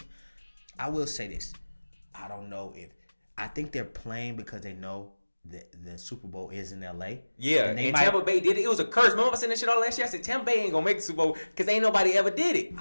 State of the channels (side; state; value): both; inverted; correlation -1.00